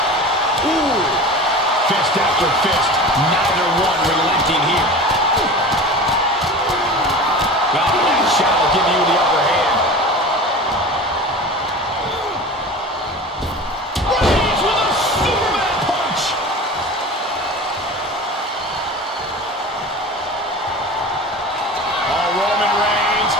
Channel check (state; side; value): normal; both; correlation 0.34